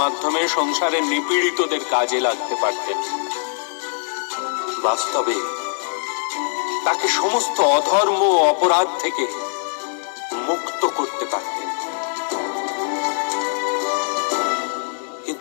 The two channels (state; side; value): silent; right; digital silence